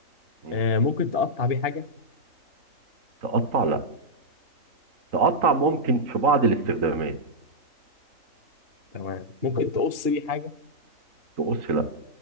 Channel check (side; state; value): left; late; 2.9 ms